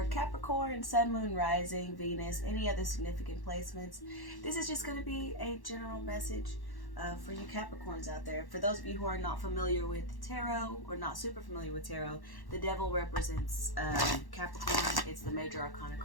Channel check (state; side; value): late; right; 1.1 ms